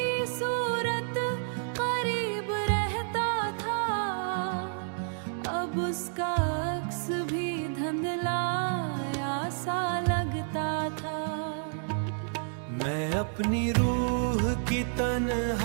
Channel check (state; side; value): silent; left; digital silence